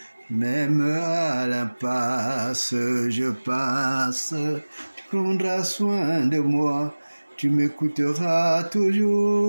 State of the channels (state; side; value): inverted; both; correlation -1.00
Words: Même à l'impasse, je passe, tu prendras soin de moi. Tu m'écouteras